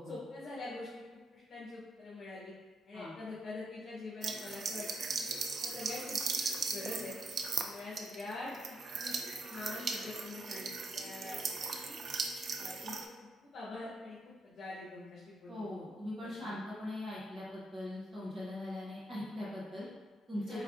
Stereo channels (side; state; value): both; normal; correlation 0.79